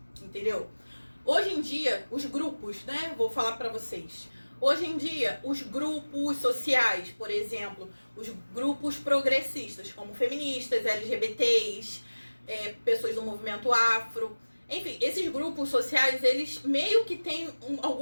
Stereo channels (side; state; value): both; inverted; correlation -1.00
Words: Entendeu? Hoje em dia, os grupos, né? Vou falar pra vocês. Hoje em dia, os grupos sociais, por exemplo, os grupos progressistas, como feministas, LGBTs, pessoas do movimento afro, enfim, esses grupos sociais, eles meio que têm